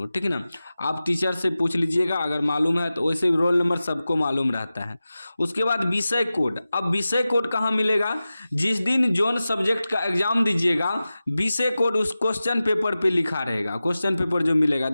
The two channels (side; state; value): both; inverted; correlation -0.95